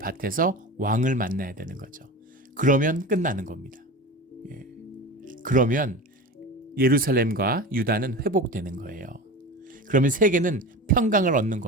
왕을 만나야 되는 거죠. 그러면 끝나는 겁니다. 그러면 예루살렘과 유다는 회복되는 거예요. 그러면 세계는 평강을 얻는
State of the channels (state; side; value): normal; both; correlation 0.30